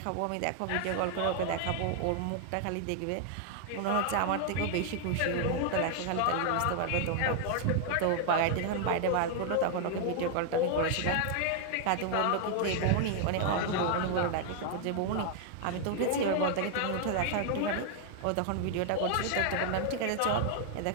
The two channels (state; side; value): different; both; correlation 0.00